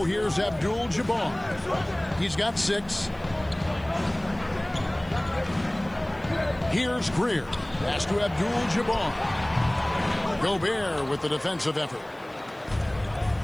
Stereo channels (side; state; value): right; noise; hiss, 29 dB below the sound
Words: here's Abdul-Jabbar. He's got 6. Here's Greer. Pass to Abdul-Jabbar. Gobert with the defensive effort.